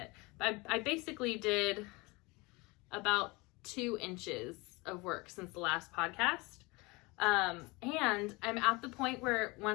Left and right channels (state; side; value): quieter; right; 25.0 dB